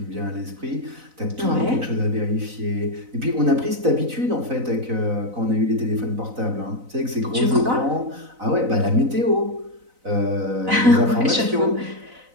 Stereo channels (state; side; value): late; left; 4.0 ms